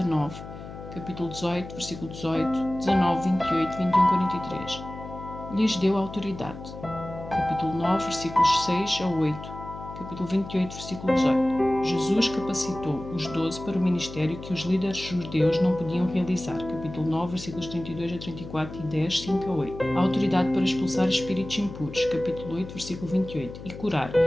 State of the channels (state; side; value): noise; left; hum, 12 dB below the sound